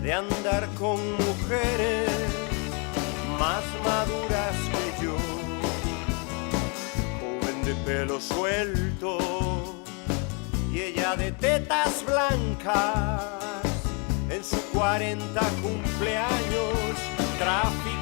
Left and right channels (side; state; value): right; quieter; 35.0 dB